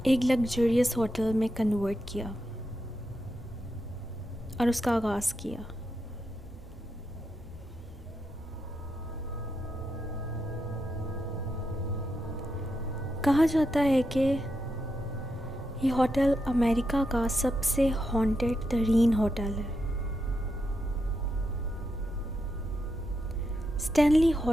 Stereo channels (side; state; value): both; normal; correlation 0.84